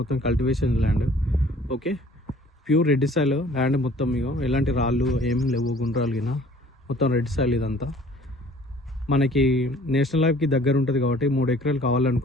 cultivation land. Okay, pure red soil land మొత్తం. ఇగో ఎలాంటి రాళ్ళు ఏం లేవు, గుండ్రాలు గిన మొత్తం రెడ్ సాయిల్ ఇదంతా. మనకి నేషనల్ హైవేకి దగ్గర ఉంటుంది కాబట్టి 3 ఎకరాలు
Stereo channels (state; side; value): normal; both; correlation 0.53